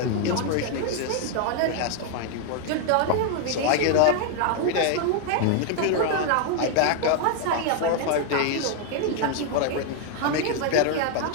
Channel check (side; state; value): both; different; correlation 0.00